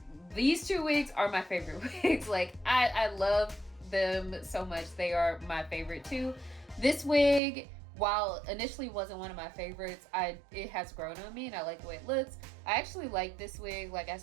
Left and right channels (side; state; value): left; drops out; at 7.4 s